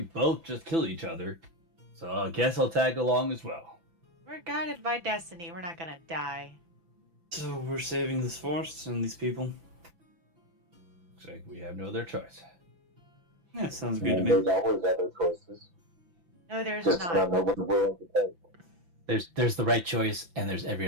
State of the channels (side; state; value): left; late; 5.9 ms